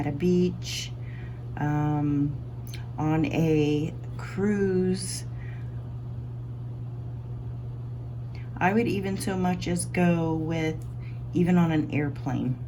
a beach, on a cruise, I would even so much as go with even on an airplane.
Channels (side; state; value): both; identical; correlation 1.00